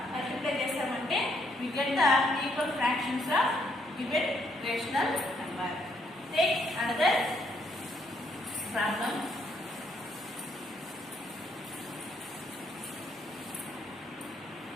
మల్టిప్లై చేస్తామంటే we get the equal fractions of given rational number. Take another problem.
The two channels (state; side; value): normal; both; correlation 0.72